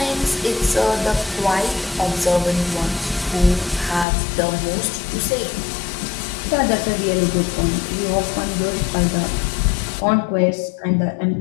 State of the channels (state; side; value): drops out; right; at 4.0 s